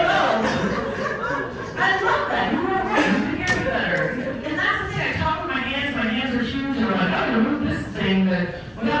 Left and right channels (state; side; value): identical; both; correlation 1.00